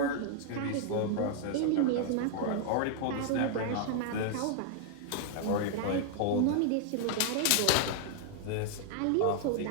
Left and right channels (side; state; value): both; different; correlation 0.00